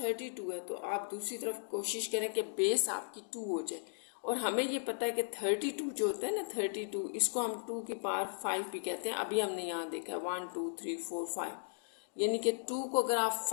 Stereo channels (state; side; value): silent; right; digital silence